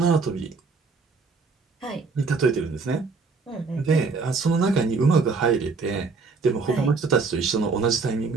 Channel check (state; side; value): quieter; left; 4.4 dB